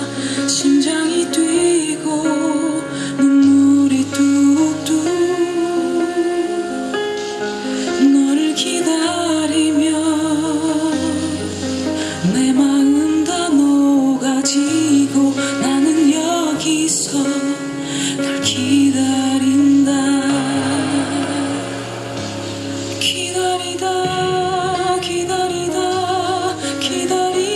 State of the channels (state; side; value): identical; both; correlation 1.00